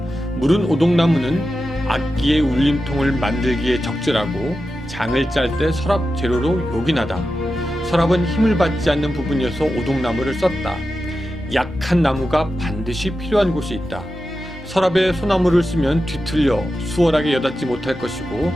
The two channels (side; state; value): both; normal; correlation 0.91